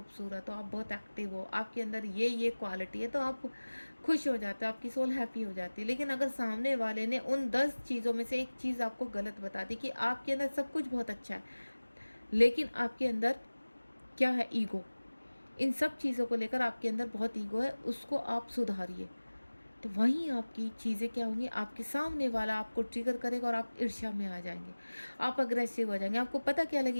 हो, आप बहुत एक्टिव हो, आपके अंदर ये क्वालिटी है, तो आप खुश हो जाते हो, आपकी सोल हैप्पी हो जाती है। लेकिन अगर सामने वाले ने उन 10 चीज़ों में से एक चीज़ आपको गलत बता दी कि आपके अंदर सब कुछ बहुत अच्छा है, लेकिन आपके अंदर क्या है, ईगो, इन सब चीज़ों को लेकर आपके अंदर बहुत ईगो है, उसको आप सुधारिए। तो वहीं आपकी चीज़ें क्या होंगी, आपके सामने वाला आपको ट्रिगर करेगा और आप ईर्ष्या में आ जाएंगे, आप अग्रेसिव हो जाएंगे। आपको पता क्या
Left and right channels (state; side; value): inverted; both; correlation -1.00